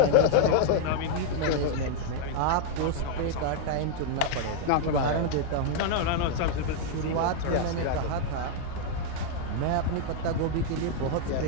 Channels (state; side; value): different; both; correlation 0.00